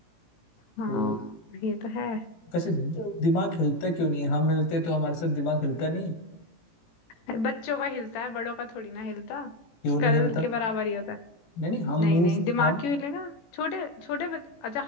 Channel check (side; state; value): right; late; 18 ms